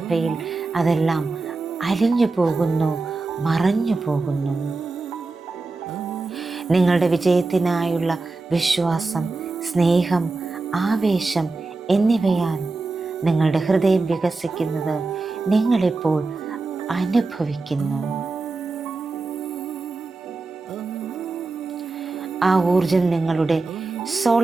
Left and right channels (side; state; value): left; quieter; 3.6 dB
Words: അതെല്ലാം അലിഞ്ഞു പോകുന്നു, മറഞ്ഞു പോകുന്നു. നിങ്ങളുടെ വിജയത്തിനായുള്ള വിശ്വാസം, സ്നേഹം, ആവേശം എന്നിവയാൽ നിങ്ങളുടെ ഹൃദയം വികസിക്കുന്നത് നിങ്ങളിപ്പോൾ അനുഭവിക്കുന്നു. ആ ഊർജം നിങ്ങളുടെ